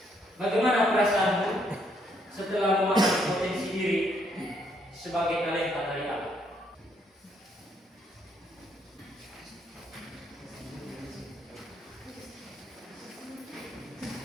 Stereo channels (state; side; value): normal; both; correlation 0.71